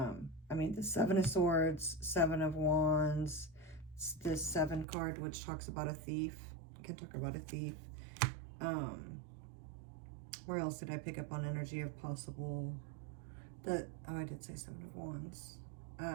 mean, the 7 of Swords, 7 of Wands, this 7 card, which talks about a thief. I can talk about a thief. Where else did I pick up on energy of possible? Oh, I did say 7 of Wands.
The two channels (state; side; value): drops out; left; at 4.9 s